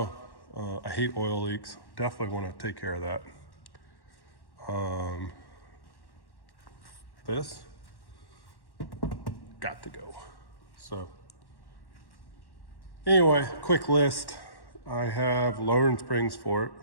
I hate oil leaks. Definitely want to take care of that. This got to go. So anyway, quick list. I have lowering springs for it,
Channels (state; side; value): late; right; 1.1 ms